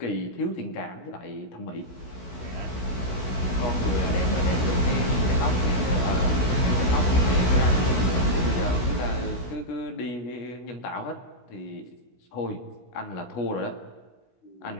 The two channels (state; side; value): late; right; 16 ms